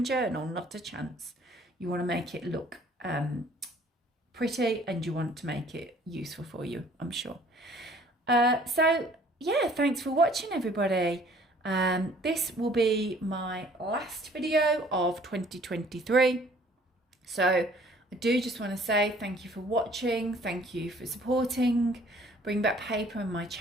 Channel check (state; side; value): normal; both; correlation 0.56